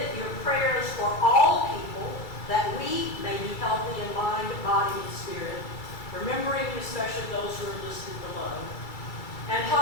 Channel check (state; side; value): late; right; 2.3 ms